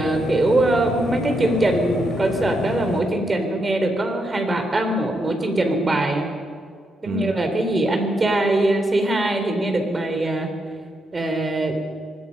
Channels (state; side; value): normal; both; correlation 0.81